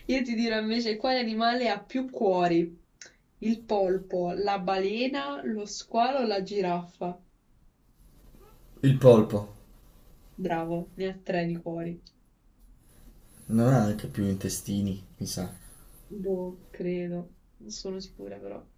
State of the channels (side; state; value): both; identical; correlation 1.00